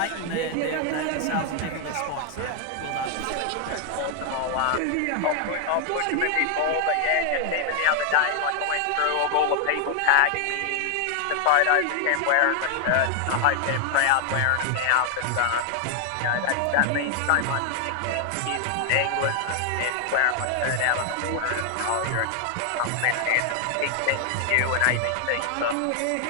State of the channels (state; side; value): different; both; correlation 0.00